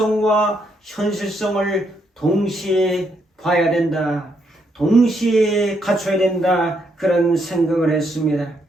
현실성을 동시에 봐야 된다. 동시에 갖춰야 된다. 그런 생각을 했습니다.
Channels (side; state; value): both; normal; correlation 0.76